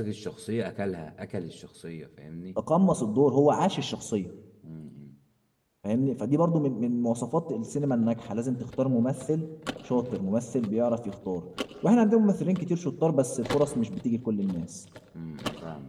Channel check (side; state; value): both; identical; correlation 1.00